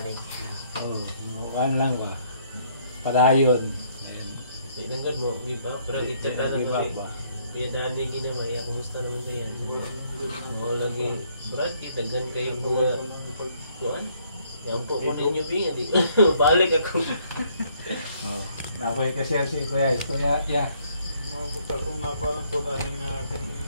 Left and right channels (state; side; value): inverted; both; correlation -0.67